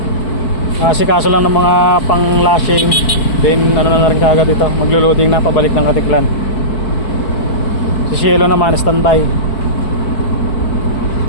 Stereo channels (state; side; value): late; right; 4.8 ms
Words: asikaso lang ng mga pang lashing. Then ano na rin kagad ito, maglo-loading na pabalik ng Katiklan. Si Cielo naman standby.